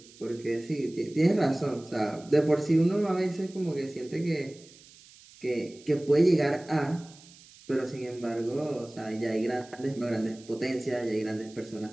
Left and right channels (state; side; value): noise; right; hiss, 23 dB below the sound